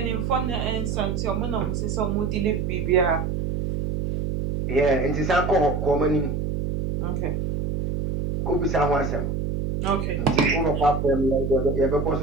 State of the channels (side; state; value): right; noise; hum, 2 dB below the sound